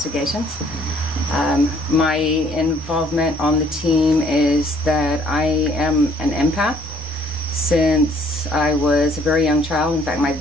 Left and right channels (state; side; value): normal; both; correlation 0.62